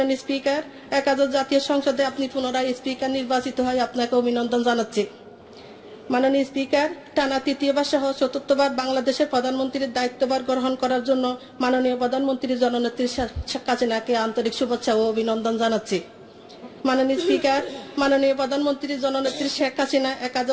স্পিকার, একাদশ জাতীয় সংসদে আপনি পুনরায় স্পিকার নির্বাচিত হয়ে আপনাকে অভিনন্দন জানাচ্ছি। মাননীয় স্পিকার, টানা তৃতীয়বার সহ চতুর্থবার বাংলাদেশের প্রধানমন্ত্রীর দায়িত্বভার গ্রহণ করার জন্য মাননীয় প্রধানমন্ত্রী জননেত্রী শেখ হাসিনাকে আন্তরিক শুভেচ্ছা ও অভিনন্দন জানাচ্ছি। মাননীয় স্পিকার, মাননীয় প্রধানমন্ত্রী জননেত্রী শেখ হাসিনা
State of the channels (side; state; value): both; identical; correlation 1.00